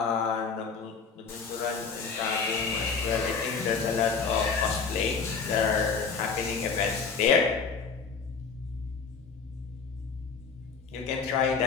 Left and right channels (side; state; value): right; quieter; 5.4 dB